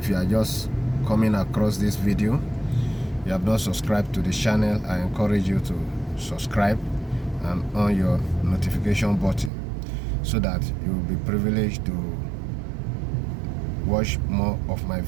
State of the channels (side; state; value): left; drops out; at 9.5 s